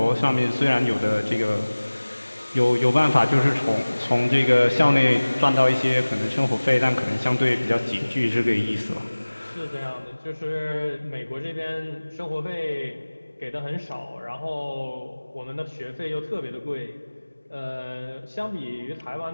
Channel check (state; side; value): inverted; both; correlation -1.00